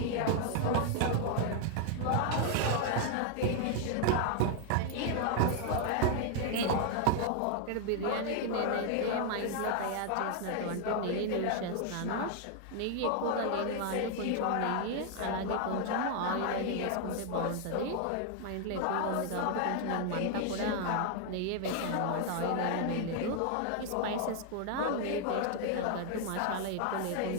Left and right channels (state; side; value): different; both; correlation 0.00